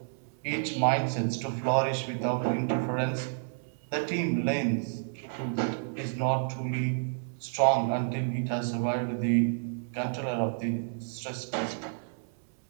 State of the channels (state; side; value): silent; left; digital silence